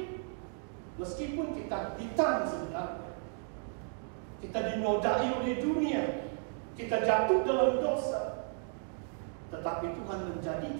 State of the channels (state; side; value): silent; left; 55 dB below the other